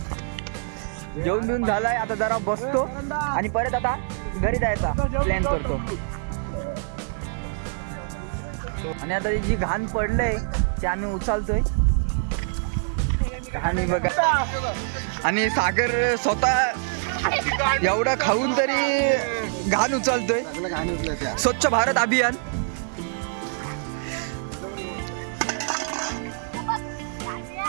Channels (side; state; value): left; silent; 62 dB below the other